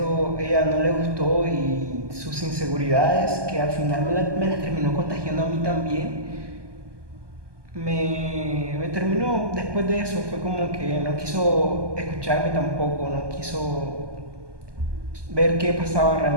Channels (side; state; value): left; late; 1.2 ms